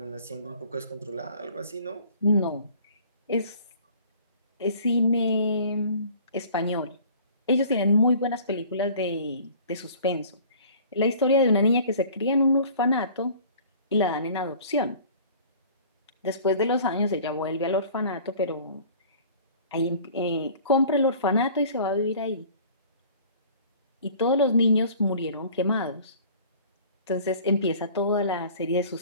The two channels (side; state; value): both; inverted; correlation -0.48